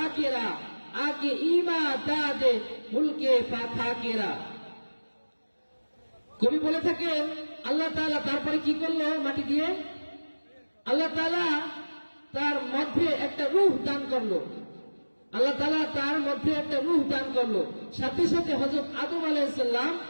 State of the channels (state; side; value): inverted; both; correlation -1.00